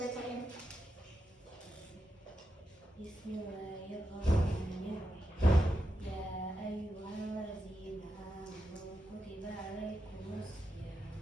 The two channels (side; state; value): both; normal; correlation 0.87